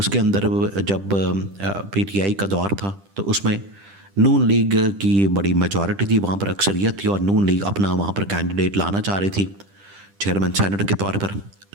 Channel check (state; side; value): late; left; 10 ms